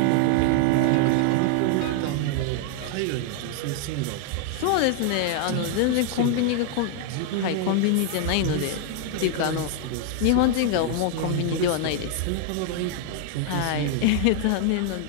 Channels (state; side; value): different; both; correlation 0.00